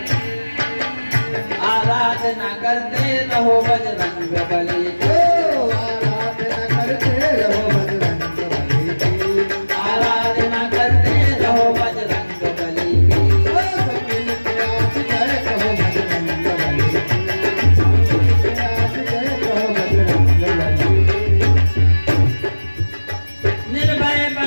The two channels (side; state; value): both; inverted; correlation -1.00